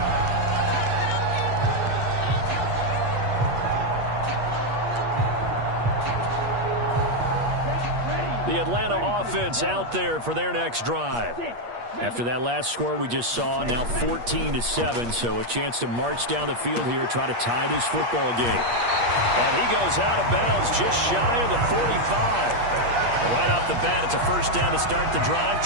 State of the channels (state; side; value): late; left; 8.4 ms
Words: The Atlanta offense out there for their next drive. After that last score we just saw, now 14-7, so a chance to march down the field here, try to tie this football game. And he goes out of bounds just shy of the 45. Right off the bat, it's a first down to start the drive,